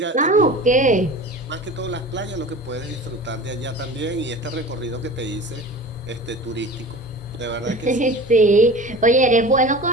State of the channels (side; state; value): both; normal; correlation 0.37